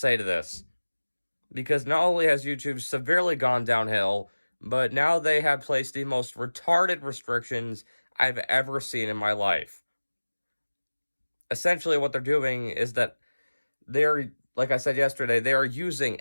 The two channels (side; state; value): both; inverted; correlation -1.00